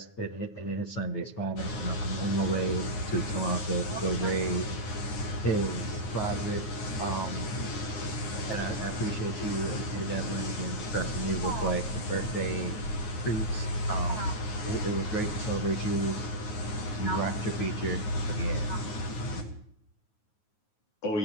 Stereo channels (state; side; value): late; right; 9.4 ms